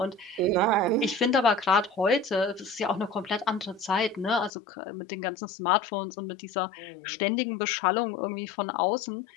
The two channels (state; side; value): drops out; right; at 4.5 s